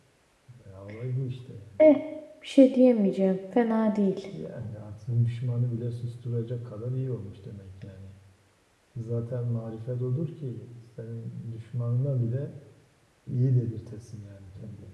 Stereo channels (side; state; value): both; identical; correlation 1.00